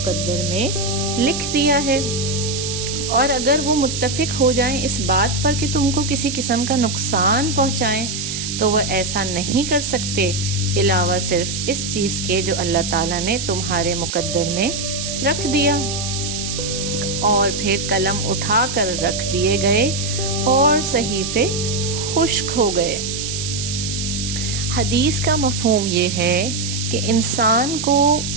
میں لکھ دیا ہے۔ اور اگر وہ متفق ہو جائیں اس بات پر کہ تم کو کسی قسم کا نقصان پہنچائیں تو وہ ایسا نہیں کر سکتے، علاوہ صرف اس چیز کے جو اللہ تعالیٰ نے تمہارے مقدر میں رکھ دیا۔ اور پھر قلم اٹھا کر رکھ دیے گئے اور صحیفے خشک ہو گئے۔ حدیث کا مفہوم یہ ہے کہ انسان کو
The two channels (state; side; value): noise; right; hiss, 5 dB below the sound